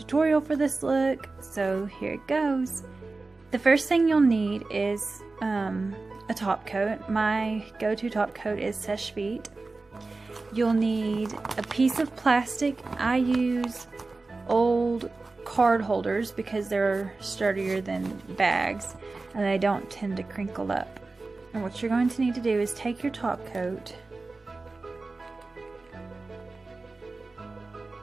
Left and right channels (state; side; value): quieter; left; 3.6 dB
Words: for this look, so here it goes. The first thing you'll need is a top coat. My go-to top coat is Seche Vite. You'll need a piece of plastic. I use old card holders because they're sturdier than bags and they don't tend to crinkle up. And what you're going to need to do is take your top coat